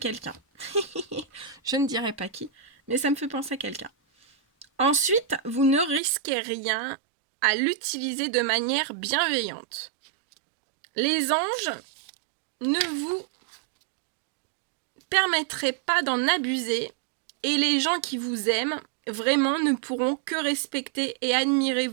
Je ne dirai pas qui, mais ça me fait penser à quelqu'un. Ensuite, vous ne risquez rien à l'utiliser de manière bienveillante. Les anges ne vous permettraient pas d'en abuser et les gens qui vous aiment vraiment ne pourront que respecter et admirer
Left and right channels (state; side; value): drops out; left; at 6.0 s